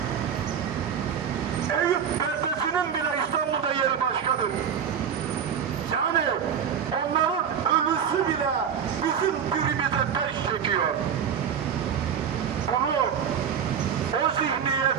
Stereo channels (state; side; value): quieter; left; 7.8 dB